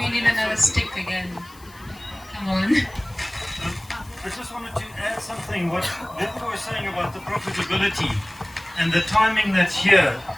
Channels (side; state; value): left; noise; hiss, 24 dB below the sound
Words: need another stick again? Come on. I just wanted to add something. What Wiebke was saying about the profitability and the timing that's here,